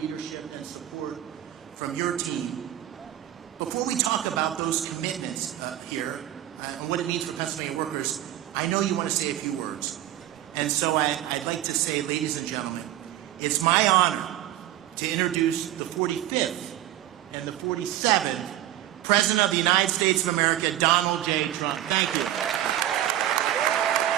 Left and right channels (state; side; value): quieter; left; 13.1 dB